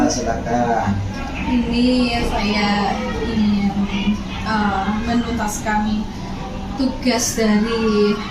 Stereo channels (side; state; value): both; identical; correlation 1.00